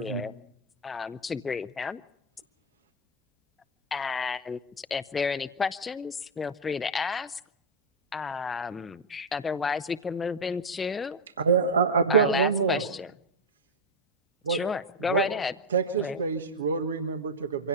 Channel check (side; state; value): both; normal; correlation 0.01